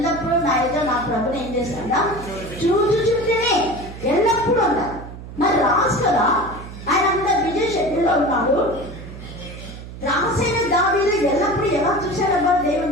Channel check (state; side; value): noise; right; hum, 13 dB below the sound